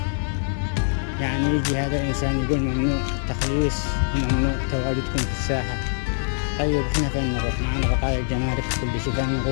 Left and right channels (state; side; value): silent; right; digital silence